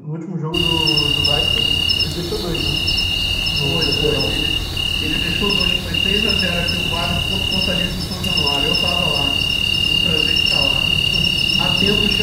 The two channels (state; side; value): identical; both; correlation 1.00